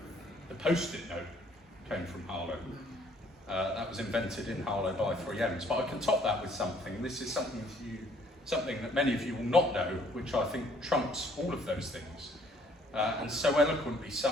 The Post-it note came from Harlow. That was invented in Harlow by 3Ms. But I can top that with something, and this is something that many of you will not know, which I think trumps all of those things. And so eloquently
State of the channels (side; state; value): both; normal; correlation 0.61